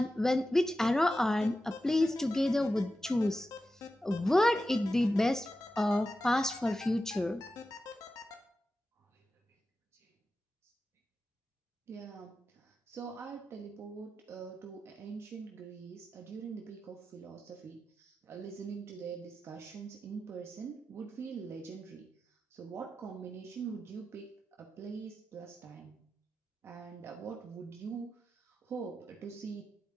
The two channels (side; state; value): both; normal; correlation 0.92